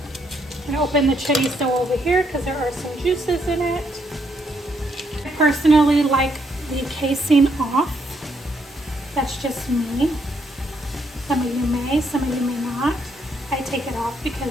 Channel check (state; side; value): normal; both; correlation 0.74